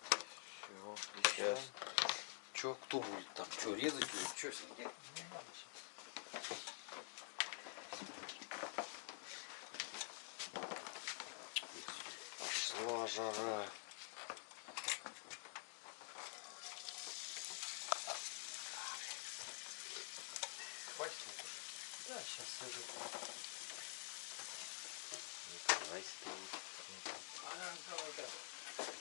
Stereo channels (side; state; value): right; silent; digital silence